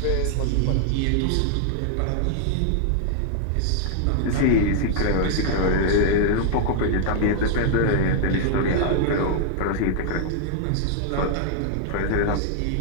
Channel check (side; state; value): both; different; correlation -0.01